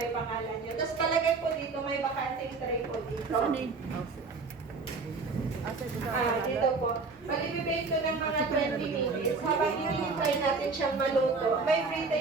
pangalan nyo. Tapos palagay po dito, may bakanting tray po dito. Dito po. Malibibake ko ng mga 20 minutes. Habang hinihintay natin siyang maluto, may free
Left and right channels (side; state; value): left; quieter; 4.2 dB